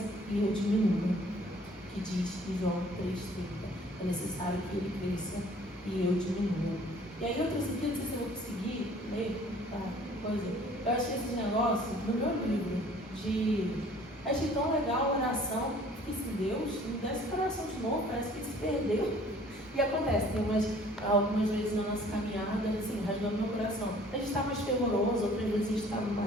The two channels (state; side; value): normal; both; correlation 0.54